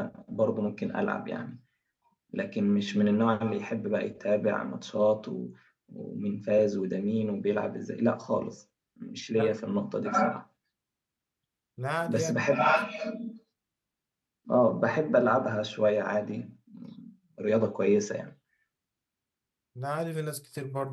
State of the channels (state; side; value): identical; both; correlation 1.00